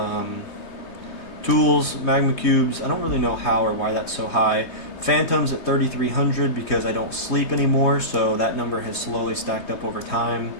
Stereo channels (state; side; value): late; right; 3.2 ms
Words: tools. Magma cubes, I don't really know how or why that's so high. Phantoms at 3,300 because I don't sleep anymore, so that number has slowly stacked up over time.